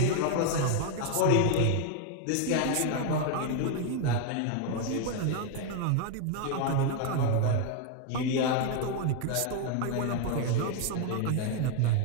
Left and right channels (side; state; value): both; different; correlation 0.01